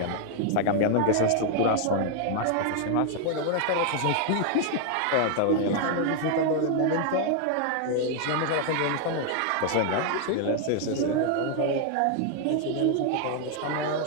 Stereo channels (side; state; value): both; different; correlation 0.00